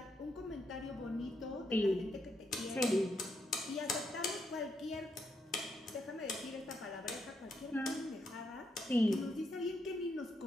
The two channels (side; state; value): both; normal; correlation 0.79